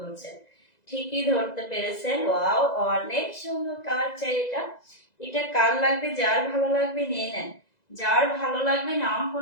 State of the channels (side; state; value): right; late; 2.0 ms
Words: ঠিকই ধরতে পেরেছেন। ওয়াও অনেক সুন্দর কালার চাই এটা, এটা কার লাগবে, যার ভালো লাগবে নিয়ে নেন, যার ভালো লাগবে নাম